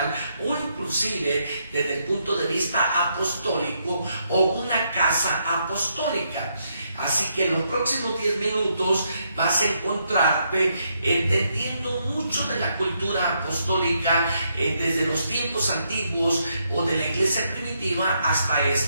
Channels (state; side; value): inverted; both; correlation -0.77